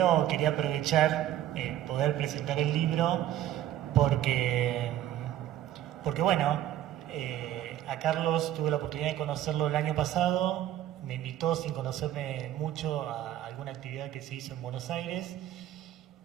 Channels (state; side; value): quieter; left; 12.3 dB